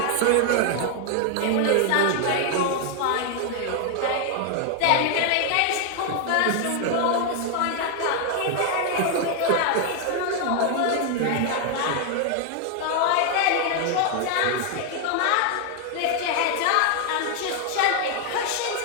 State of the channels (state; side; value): different; both; correlation 0.01